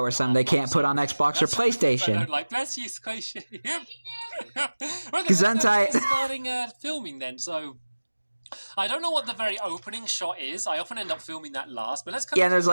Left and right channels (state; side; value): inverted; both; correlation -1.00